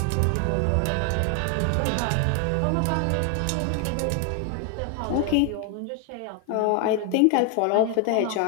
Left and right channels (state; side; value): different; both; correlation 0.00